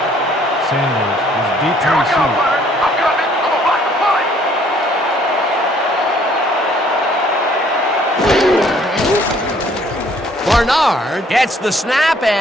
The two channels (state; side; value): normal; both; correlation 0.61